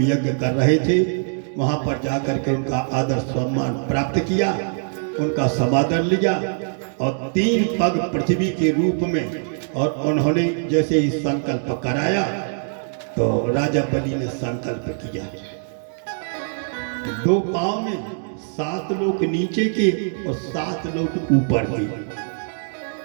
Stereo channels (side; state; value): left; silent; digital silence